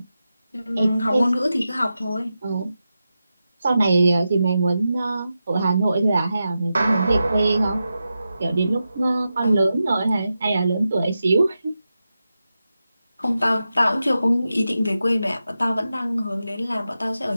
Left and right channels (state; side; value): inverted; both; correlation -0.91